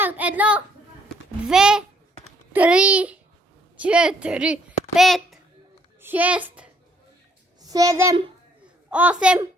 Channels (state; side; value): normal; both; correlation 0.66